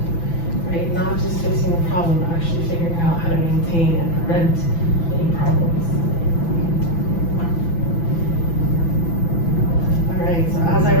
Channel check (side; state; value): right; late; 6.0 ms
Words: right? Not just fixing the problem, but actually figuring out how to maintain and prevent any problems. All right, so as I